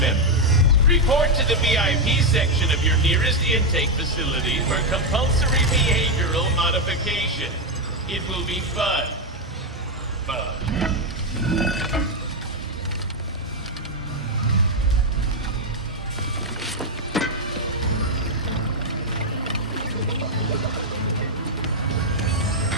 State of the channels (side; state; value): both; normal; correlation 0.03